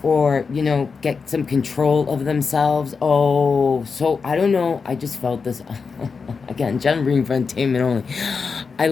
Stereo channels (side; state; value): right; quieter; 5.2 dB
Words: or, you know, get some control of themselves. Oh, so, I don't know, I just felt this, again, general reading for entertainment only. I